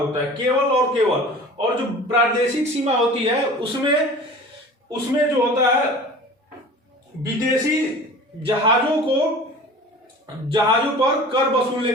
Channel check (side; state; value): both; normal; correlation 0.40